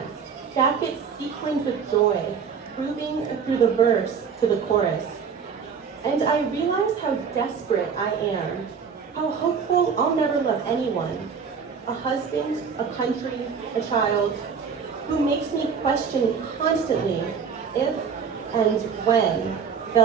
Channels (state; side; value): quieter; left; 6.4 dB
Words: jackets sequined with joy, grooving through the verse to the chorus. And I realize how desperate I am, how hopeful I'll never love anyone. A husband, a country, a child, who makes me question constantly if and when